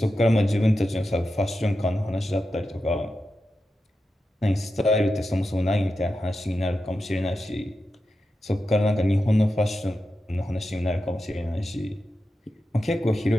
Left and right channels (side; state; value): both; normal; correlation 0.90